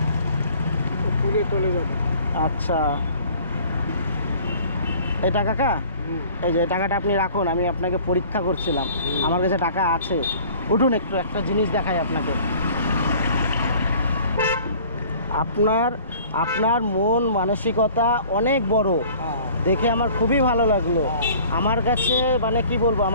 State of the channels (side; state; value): both; inverted; correlation -0.50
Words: পুড়ে চলে যাবে। আচ্ছা, এটা কাকা, এই যে টাকাটা আপনি রাখুন, আমি আপনাকে পরীক্ষা করছিলাম। আমার কাছে টাকা আছে। উঠুন, একটু একটা জিনিস দেখাই আপনাকে। আপনার মন মানসিকতা অনেক বড়, দেখে আমার খুবই ভালো লাগলো। আমার কাছে মানে কি বলবো,